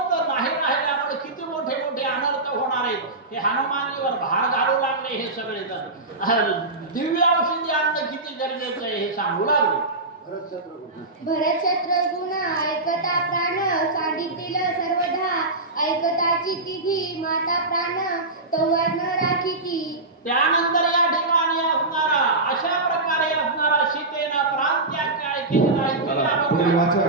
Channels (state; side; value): quieter; left; 3.0 dB